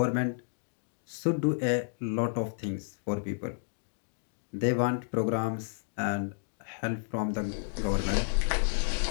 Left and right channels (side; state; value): right; silent; digital silence